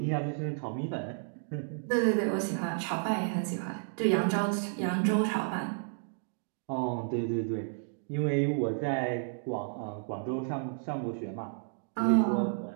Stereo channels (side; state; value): left; silent; digital silence